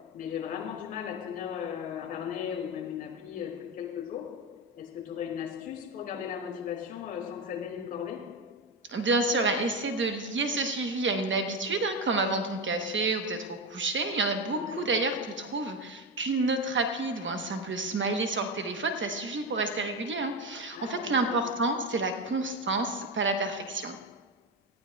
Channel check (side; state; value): both; normal; correlation 0.15